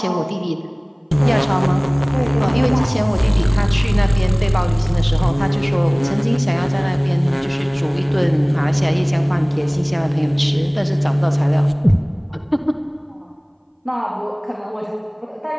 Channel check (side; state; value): both; identical; correlation 1.00